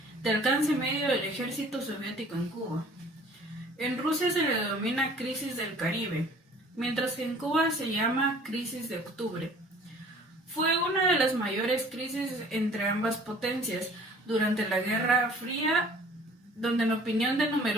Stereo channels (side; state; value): both; normal; correlation 0.51